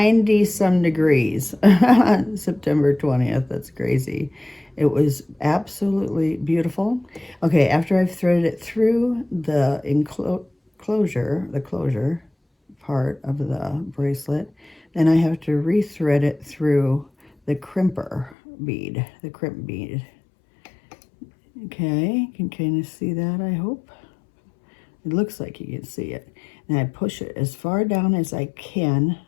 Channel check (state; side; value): drops out; right; at 18.4 s